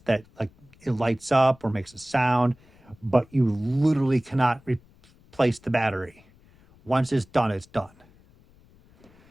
that like it lights up or makes a sound, but you literally cannot replace the battery. Once it's done, it's done.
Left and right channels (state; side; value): noise; left; rumble, 29 dB below the sound